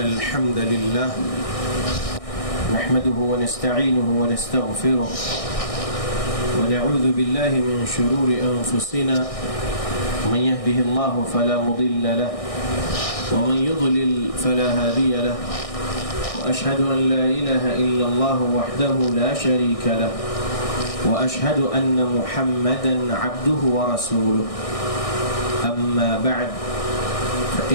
الحمد لله نحمده ونستعينه ونستغفره ونعوذ بالله من شرور أنفسنا من يهده الله فلا مضل له ومن يضلل فلا هادي له وأشهد أن لا إله إلا الله وحده لا شريك له وأشهد أن محمدا عبده ورسوله أما بعد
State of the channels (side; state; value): right; late; 1.6 ms